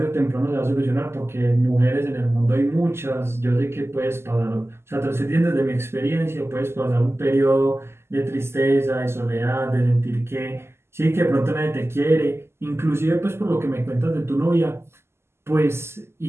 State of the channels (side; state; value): left; late; 0.12 ms